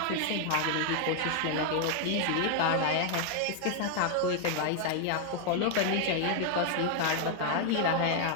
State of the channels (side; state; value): both; different; correlation 0.00